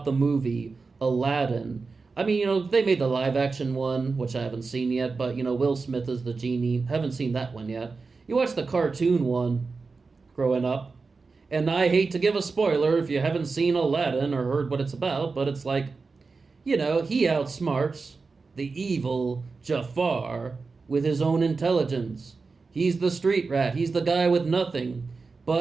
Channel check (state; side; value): quieter; left; 4.3 dB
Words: the movie Aladdin. I mean, they made the live action one, which I haven't seen yet, but, Will Smith is the genie. Haven't seen that one yet. You watch the cartoon one growing up, and I hate to give a spoiler if you haven't seen Aladdin or heard what it's about, but it's like, he outsmarts the evil Jafar with his own intelligence. He's the street rat. He's the guy with nothing.